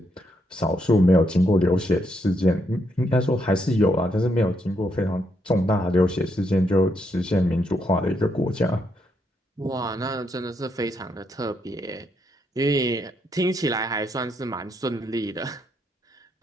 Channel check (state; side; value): normal; both; correlation 0.77